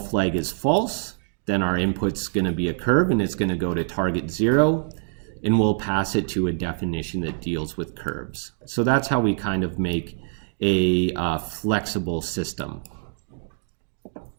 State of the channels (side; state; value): left; silent; digital silence